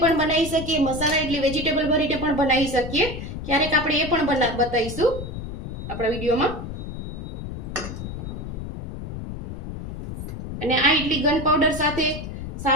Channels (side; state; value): left; noise; rumble, 8 dB below the sound